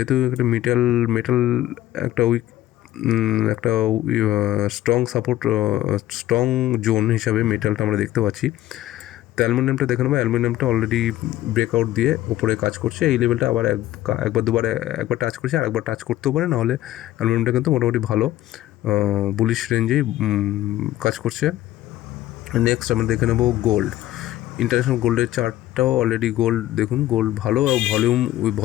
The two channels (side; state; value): right; quieter; 14.7 dB